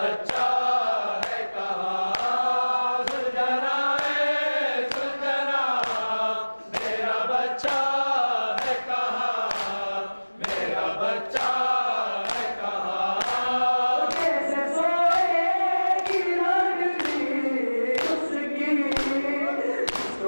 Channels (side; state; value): both; inverted; correlation -1.00